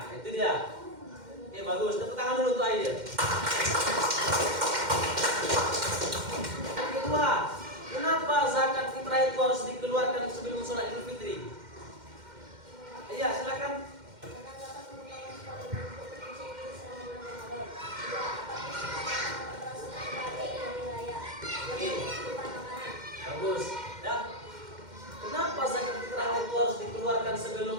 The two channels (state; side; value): late; left; 2.1 ms